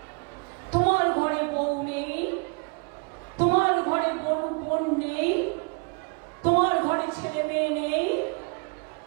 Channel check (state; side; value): quieter; left; 32.0 dB